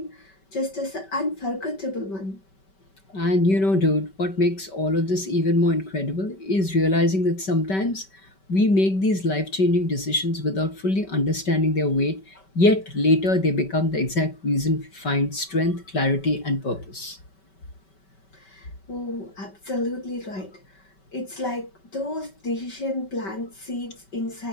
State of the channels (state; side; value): late; right; 5.2 ms